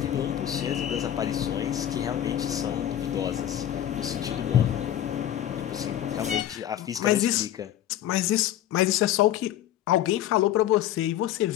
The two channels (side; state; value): right; quieter; 11.7 dB